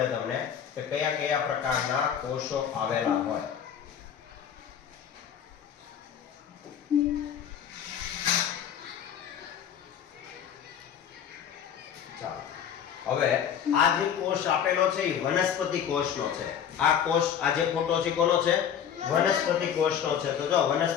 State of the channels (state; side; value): quieter; right; 8.6 dB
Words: તમને કે કયા કયા પ્રકારના કોષો આવેલા હોય. હવે આ જે કોષ આપેલો છે એ વનસ્પતિ કોષનો છે. આ કોષ, આ જે ફોટો છે કોનો છે? વનસ્પતિ કોષનો છે. તો જો